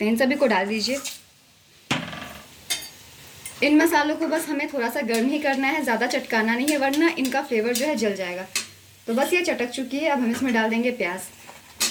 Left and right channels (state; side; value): identical; both; correlation 1.00